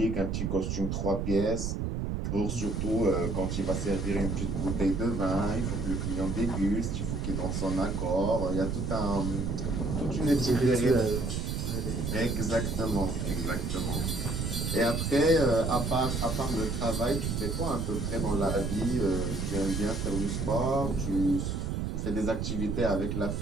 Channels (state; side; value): noise; right; rumble, 1 dB below the sound